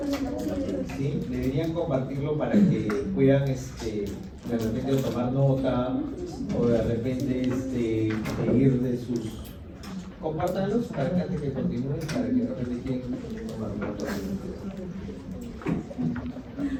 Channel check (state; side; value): identical; both; correlation 1.00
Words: Sí, deberían compartirlo para que puedan de repente tomar nota o de repente seguir de sus... Compártanlos para que antes que continúen, para que de repente quieran tomar nota.